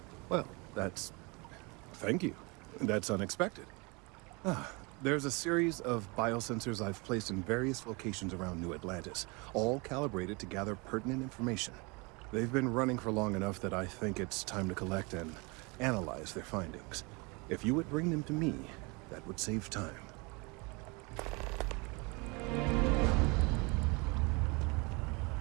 Well, thank you. That's unexpected. There's a series of biosensors I've placed in various locations around New Atlantis, all calibrated to gather pertinent information. They've been running for long enough that I think it's time to collect and analyze their findings. If you would bring them to me, that would save time.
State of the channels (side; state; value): left; quieter; 28.4 dB